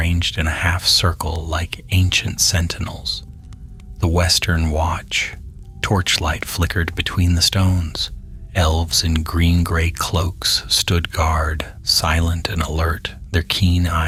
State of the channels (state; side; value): identical; both; correlation 1.00